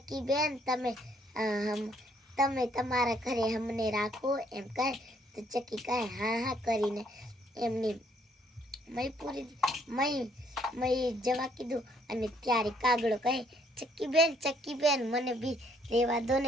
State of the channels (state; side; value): normal; both; correlation 0.67